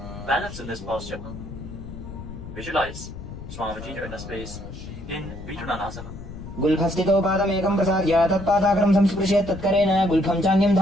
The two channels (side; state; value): left; noise; rumble, 12 dB below the sound